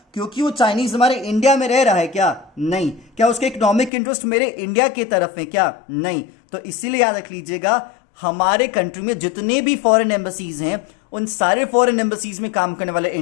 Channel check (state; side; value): drops out; right; at 3.9 s